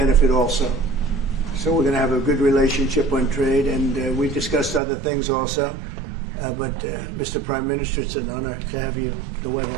also. So we're going to have a good relationship on trade, and we discussed other things also. But Mr. Prime Minister, it's an honor to have you at the White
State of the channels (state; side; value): drops out; left; at 4.8 s